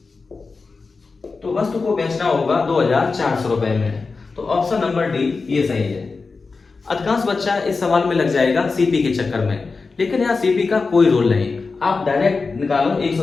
तो वस्तु को बेचना होगा 2400 रुपए में, तो ऑप्शन नंबर डी ये सही है। अधिकांश बच्चा इस सवाल में लग जाएगा सीपी के चक्कर में, लेकिन यहाँ सीपी का कोई रोल नहीं, आप डायरेक्ट निकालो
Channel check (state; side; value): quieter; right; 4.3 dB